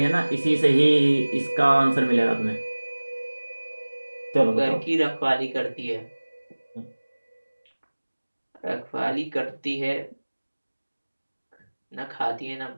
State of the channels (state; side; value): inverted; both; correlation -1.00